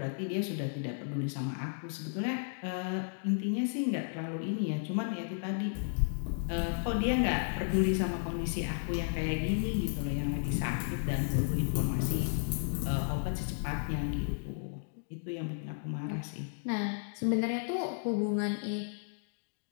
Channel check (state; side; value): silent; right; digital silence